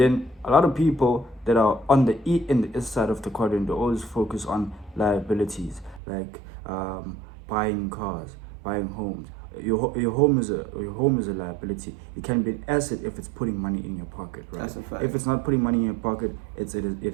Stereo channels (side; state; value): left; drops out; at 6.0 s